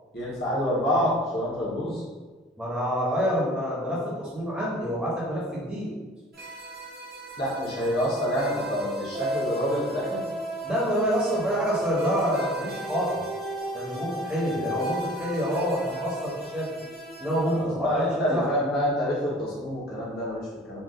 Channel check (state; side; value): normal; both; correlation 0.45